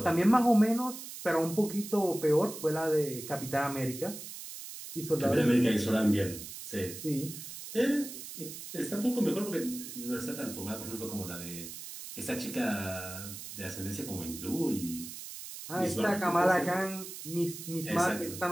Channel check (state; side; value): noise; right; hiss, 11 dB below the sound